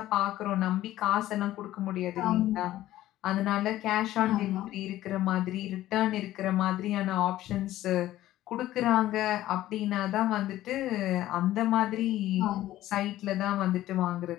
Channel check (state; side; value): quieter; right; 14.5 dB